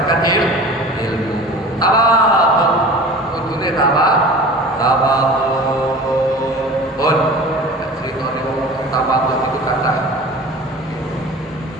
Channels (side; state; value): both; normal; correlation 0.39